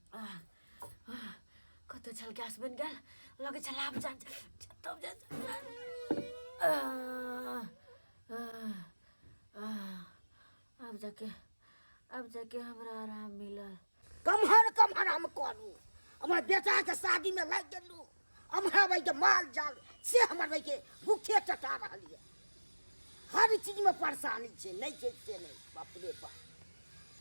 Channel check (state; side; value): inverted; both; correlation -1.00